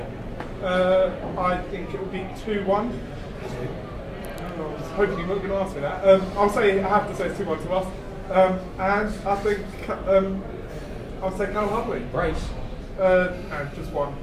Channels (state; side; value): identical; both; correlation 1.00